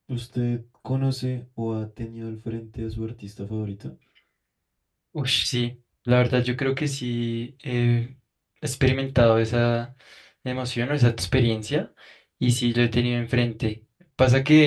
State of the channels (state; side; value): identical; both; correlation 1.00